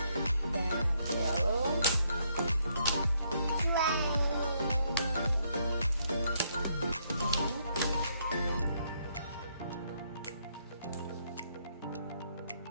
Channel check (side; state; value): both; inverted; correlation -0.73